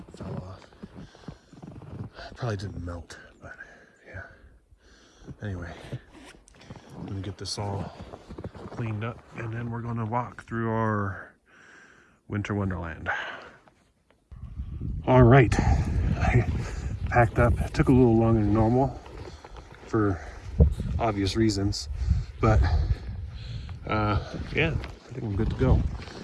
fell off. Probably didn't melt, but yeah. Anyway, I'm gonna get this all cleaned up, and then we're gonna walk through our winter wonderland. All right, I packed up. It took a little longer than normal for obvious reasons, but yeah, I think I'm good to go.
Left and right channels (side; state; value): both; identical; correlation 1.00